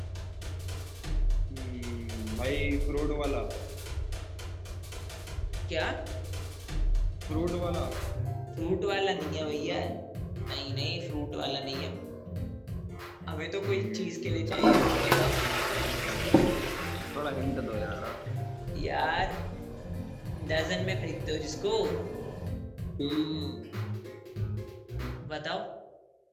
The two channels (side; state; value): both; identical; correlation 1.00